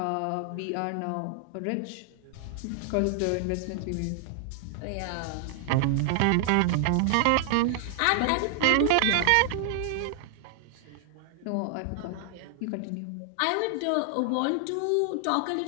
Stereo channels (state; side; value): different; both; correlation 0.00